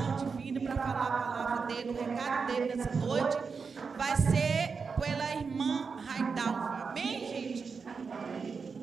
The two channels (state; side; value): quieter; left; 5.3 dB